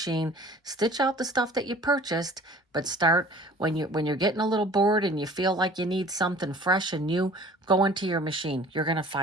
Stitch out the stuff that you purchased, but start when you're getting a little bored and you feel like you need something fresh and new, go into your machine. You're going to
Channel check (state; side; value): normal; both; correlation 0.48